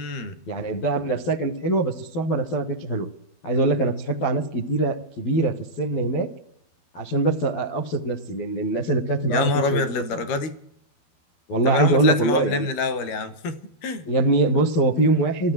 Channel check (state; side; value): late; right; 12 ms